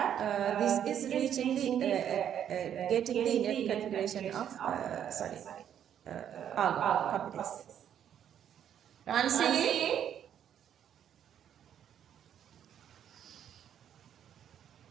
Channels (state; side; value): quieter; left; 9.6 dB